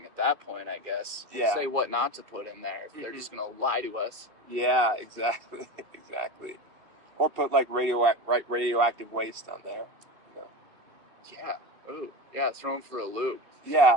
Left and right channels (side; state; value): left; late; 2.5 ms